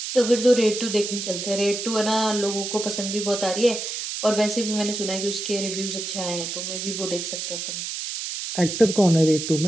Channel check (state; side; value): noise; right; hiss, 5 dB below the sound